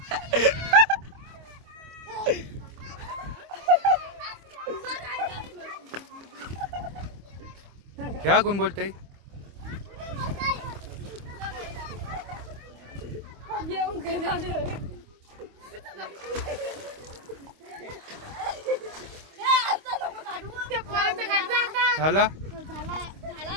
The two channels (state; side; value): late; left; 25 ms